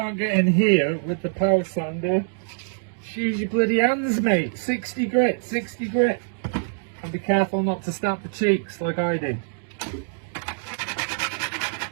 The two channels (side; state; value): left; silent; digital silence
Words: get in here with the power sander. Use your bloody hands, mate. 60 grit. And be careful not to snap the cheeks like I did.